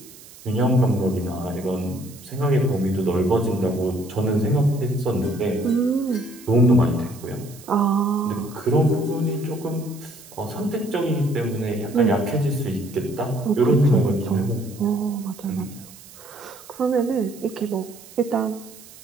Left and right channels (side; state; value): right; noise; hiss, 20 dB below the sound